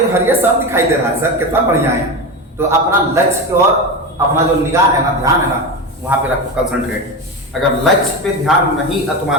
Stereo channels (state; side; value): normal; both; correlation 0.21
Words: हरिया सब दिखाई दे रहा है सर, कितना बढ़िया है। तो अपना लक्ष्य और अपना जो निगाह है ना, ध्यान है ना, वहां पे रखो, कंसंट्रेट। अगर लक्ष्य पे ध्यान नहीं